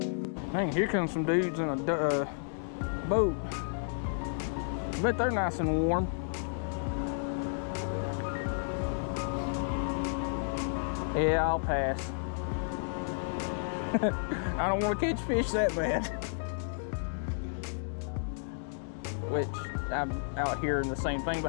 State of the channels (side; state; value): right; silent; digital silence